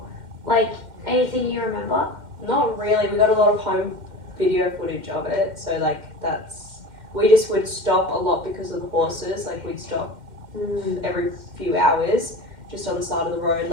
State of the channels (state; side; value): late; left; 2.1 ms